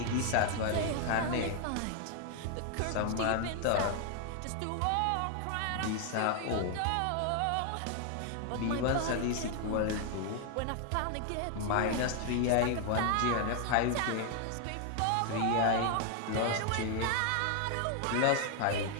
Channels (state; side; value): different; both; correlation 0.00